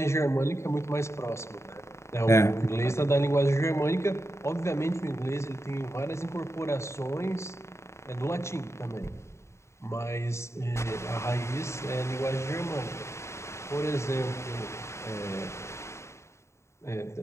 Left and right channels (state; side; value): late; right; 0.13 ms